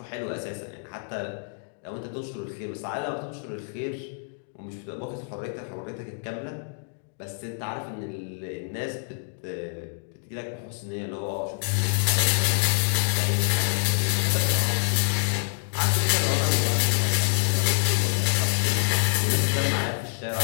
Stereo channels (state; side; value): silent; right; digital silence